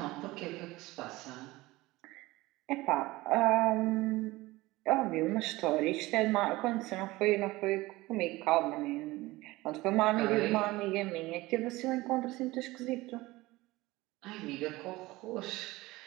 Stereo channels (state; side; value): quieter; left; 19.8 dB